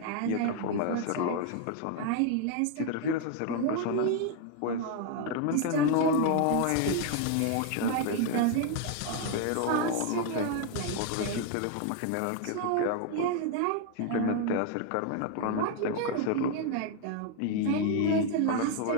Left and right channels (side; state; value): both; different; correlation 0.01